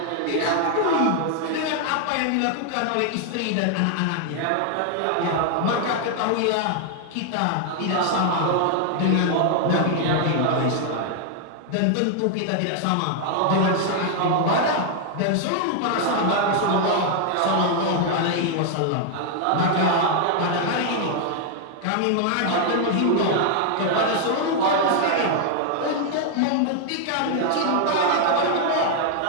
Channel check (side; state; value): both; different; correlation 0.00